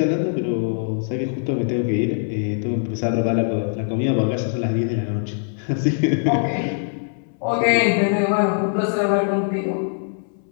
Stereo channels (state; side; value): silent; right; 64 dB below the other